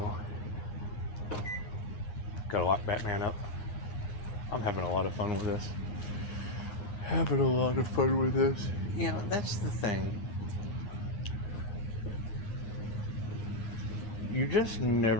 Gotta lock Batman up. I'm having a lot of fun with this. You know, that's the thing. You just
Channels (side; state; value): right; late; 9.7 ms